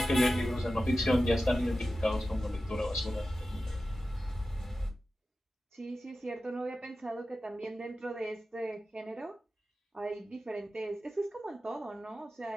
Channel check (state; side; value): normal; both; correlation 0.93